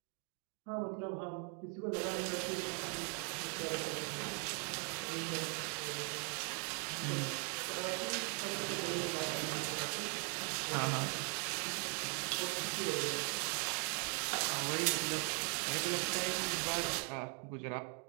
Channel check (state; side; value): quieter; left; 39.5 dB